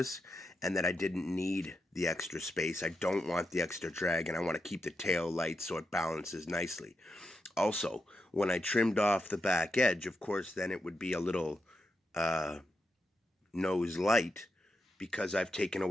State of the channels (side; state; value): both; normal; correlation 0.85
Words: and that I didn't need the extra space. I don't want the extra drag, and I want to keep the tail light so it balances nicely. Also, when I trimmed off the back edge, of course, then it would be a little nose light, because I've taken